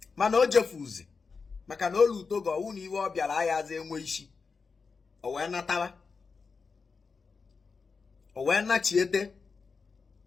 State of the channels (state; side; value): quieter; right; 4.9 dB